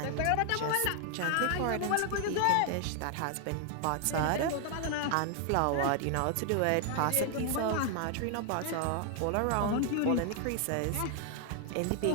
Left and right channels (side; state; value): both; different; correlation 0.00